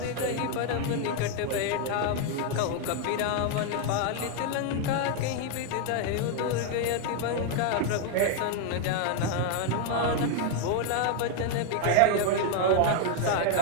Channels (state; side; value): different; both; correlation 0.00